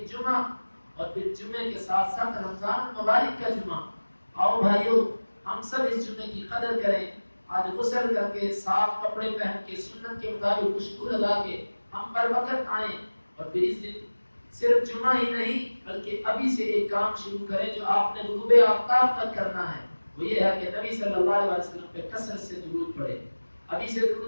جمعہ اور پھر جمعے کے ساتھ ساتھ رمضان مبارک کا جمعہ۔ آؤ بھائیو ہم سب اس جمعے کی قدر کریں، آج غسل کر کے صاف کپڑے پہن کے سنت کے مطابق خوشبو لگا کے ہم پر وقت آئیں، اور پھر اس دن صرف جمعہ ہی نہیں بلکہ ابھی سے ایک کام شروع کریں جو آپ نے غروب آفتاب تک کرنا ہے، وہ یہ ہے کہ نبی صلی اللہ علیہ وسلم پہ کثرت سے درود پڑھیں۔ ابھی سے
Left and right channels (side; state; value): both; inverted; correlation -1.00